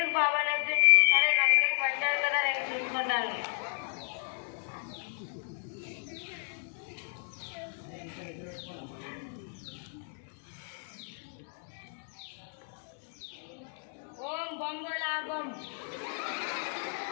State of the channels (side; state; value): right; silent; 56 dB below the other